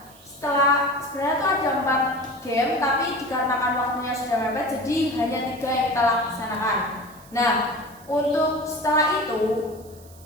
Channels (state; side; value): noise; right; hiss, 24 dB below the sound